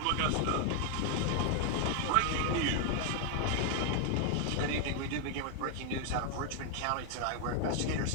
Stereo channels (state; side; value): different; both; correlation 0.00